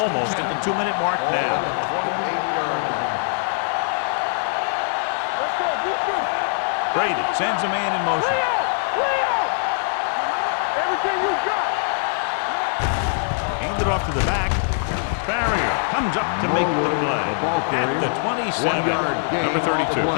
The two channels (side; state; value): right; silent; digital silence